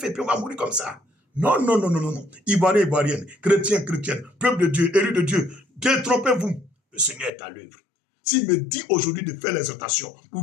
puis on va mourir comme ça? Non, non, non, non, non, non. Ivoirien, Ivoirienne, chrétien, chrétienne, peuple de Dieu, élu de Dieu, détrompez-vous. Le Seigneur est à l'œuvre. S'il me dit aujourd'hui de faire l'exhortation,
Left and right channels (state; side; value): drops out; right; at 7.3 s